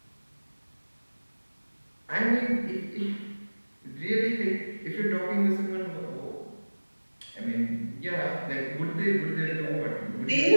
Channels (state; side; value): inverted; both; correlation -1.00